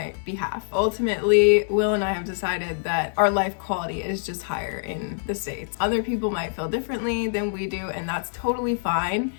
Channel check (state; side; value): silent; right; digital silence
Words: behalf. Ultimately, Will and I have decided that our life quality is just higher in the States. Other people might feel differently than we do, and that's totally fine.